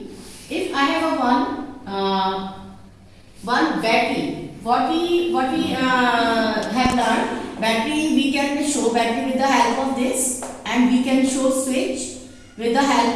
If I have a one battery, what we have learned, battery we can show battery with the help of this, and we can show switch with the help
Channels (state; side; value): identical; both; correlation 1.00